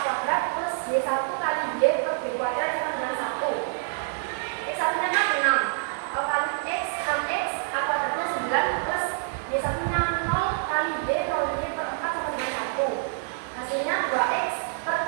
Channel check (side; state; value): left; silent; digital silence